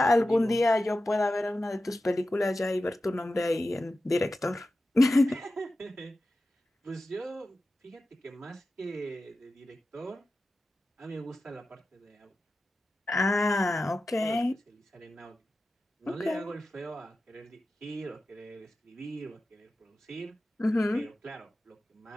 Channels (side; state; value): both; normal; correlation 0.93